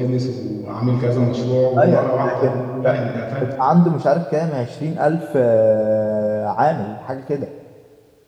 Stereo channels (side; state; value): both; identical; correlation 1.00